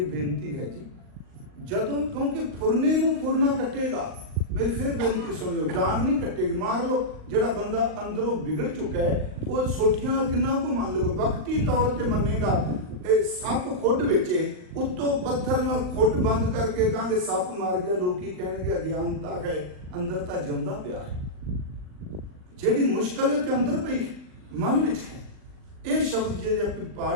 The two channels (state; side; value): late; left; 39 ms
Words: बेनती है जी। जदों क्योंकि फुरने नूं फुरना कटेगा, मेरी फिर बेनती सुनियो, डांग नहीं कटेगी, मार लो। जिहड़ा बंदा अंदरों बिगड़ चुका है वो सोटियां किन्ना को मान लो, वक्ती तौर पर मनेगा। सप खुड विचे उत्तों पत्थर नाल खुड बंद करके कहांगे सप मार गया, लोग की कहणगे अज्ञानता है, अंदर तां जिंदा पिया है। जिहड़ी मुश्किल है अंदर पई मन विच है। ये शब्द जे आप